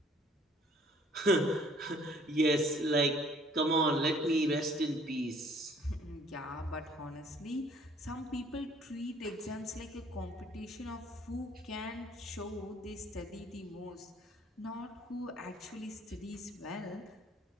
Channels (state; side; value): normal; both; correlation 0.58